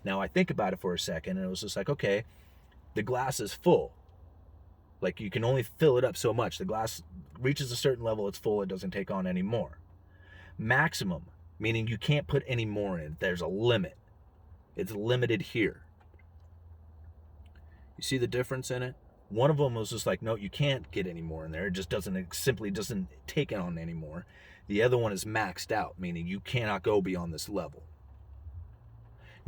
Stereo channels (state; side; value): identical; both; correlation 1.00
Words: Now, I think about it for a second, and it was just like, okay, the glass is full. Like, you can only fill it up so much. The glass reaches a certain level, it's full, it doesn't take on any more. Maximum, meaning you can't put any more in. There's a limit. It's limited here. You see the difference in it? One of them was just like, no, you can't get any more in there. It just simply doesn't take on anymore. The other one is maxed out, meaning you cannot go beyond this level.